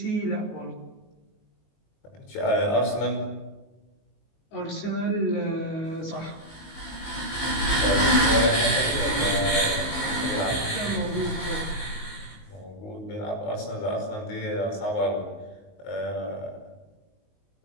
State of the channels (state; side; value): late; right; 19 ms